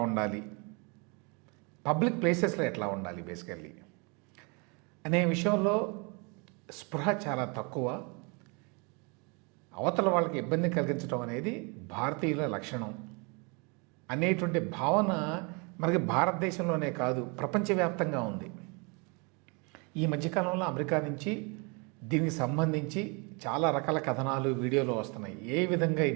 ఉండాలి, పబ్లిక్ ప్లేసెస్లో ఎట్లా ఉండాలి బేసికల్లీ అనే విషయంలో స్పృహ చాలా తక్కువ. అవతల వాళ్ళకి ఇబ్బంది కలిగించడం అనేది భారతీయుల లక్షణం అనేటువంటి భావన మనకి భారతదేశంలోనే కాదు ప్రపంచవ్యాప్తంగా ఉంది. ఈ మధ్యకాలంలో అమెరికా నుంచి దీనికి సంబంధించి చాలా రకాల కథనాలు వీడియోలు వస్తున్నాయి. ఏ విధంగా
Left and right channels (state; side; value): quieter; left; 31.8 dB